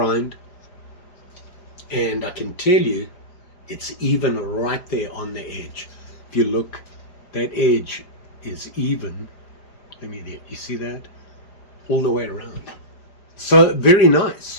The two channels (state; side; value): late; right; 4.9 ms